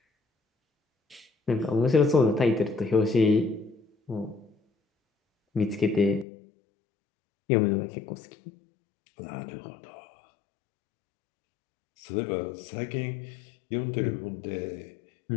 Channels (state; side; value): drops out; right; at 6.2 s